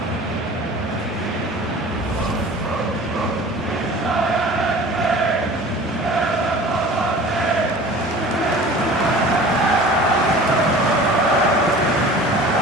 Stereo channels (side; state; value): both; normal; correlation 0.42